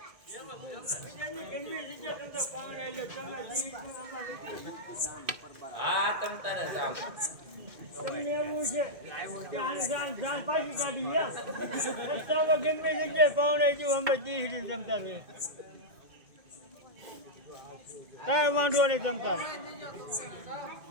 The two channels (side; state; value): left; late; 2.1 ms